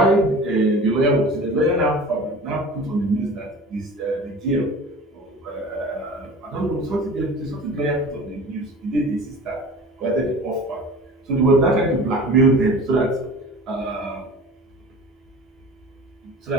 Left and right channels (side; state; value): both; normal; correlation 0.39